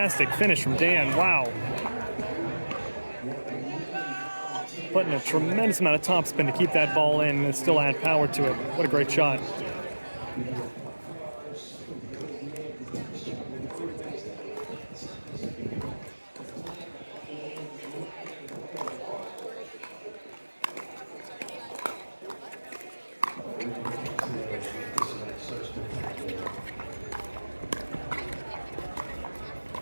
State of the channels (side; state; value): both; inverted; correlation -1.00